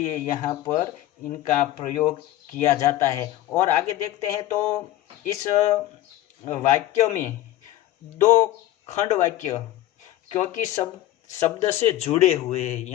यहाँ पर इनका प्रयोग किया जाता है। और आगे देखते हैं तो इस वाक्य में 2 खंड वाक्य क्योंकि शब्द से जुड़े हुए हैं।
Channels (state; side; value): quieter; right; 14.5 dB